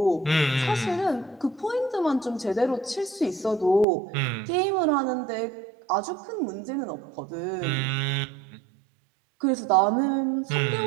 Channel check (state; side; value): drops out; left; at 3.9 s